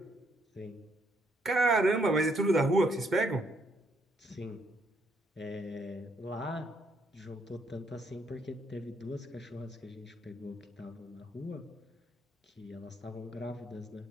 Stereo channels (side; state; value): both; normal; correlation 0.72